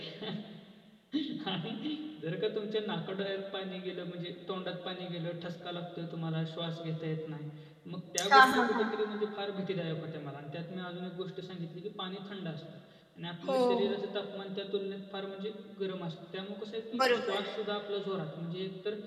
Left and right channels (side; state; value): both; identical; correlation 1.00